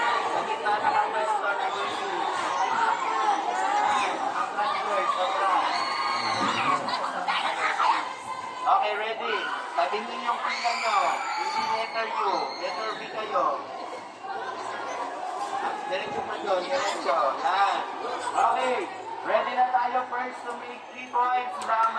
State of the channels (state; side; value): identical; both; correlation 1.00